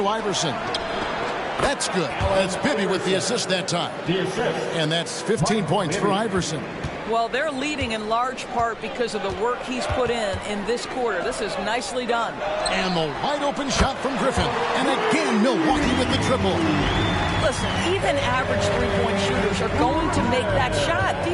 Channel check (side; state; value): both; identical; correlation 1.00